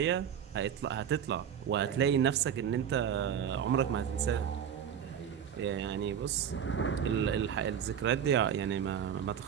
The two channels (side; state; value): left; quieter; 8.7 dB